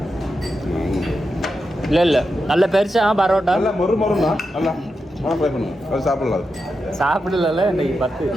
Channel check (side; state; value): both; normal; correlation 0.88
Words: இல்லை நல்ல பெருசா பரோட்டா நல்லா மொறுனா நல்லா ஃப்ரை பண்ணுங்க. அது சாப்பிடலாம். சாப்பிடல இன்னைக்கு 10